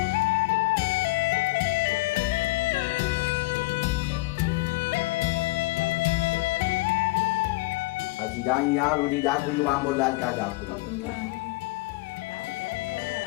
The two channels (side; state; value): right; quieter; 22.5 dB